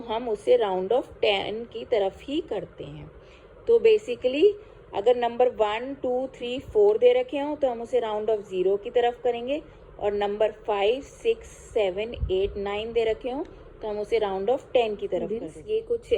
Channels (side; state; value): both; identical; correlation 1.00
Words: उसे राउंड ऑफ 10 की तरफ ही करते हैं। तो बेसिकली अगर नंबर 1 2 3 4 दे रखे हों तो हम उसे राउंड ऑफ 0 की तरफ करेंगे, और नंबर 5 6 7 8 9 दे रखे हों तो हम उसे राउंड ऑफ 10 की तरफ करेंगे। ये कुछ